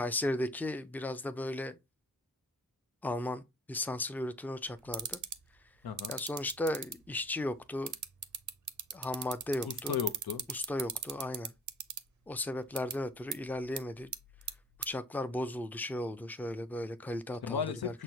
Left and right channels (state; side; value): normal; both; correlation 0.51